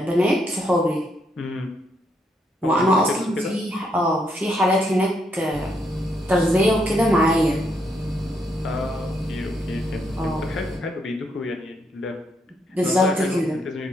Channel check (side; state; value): both; normal; correlation 0.76